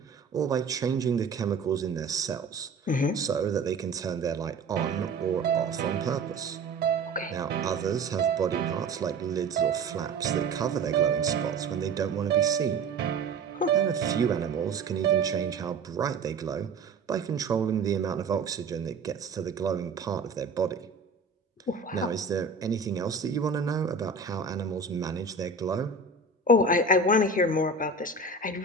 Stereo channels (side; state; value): left; quieter; 4.0 dB